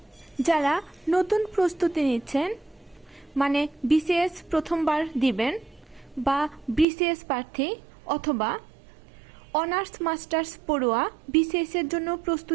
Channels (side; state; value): left; drops out; at 6.9 s